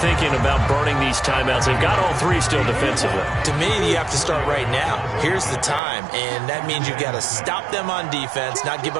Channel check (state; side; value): drops out; left; at 5.8 s